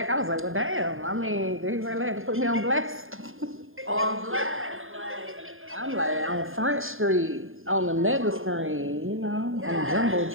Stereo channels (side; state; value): left; late; 0.59 ms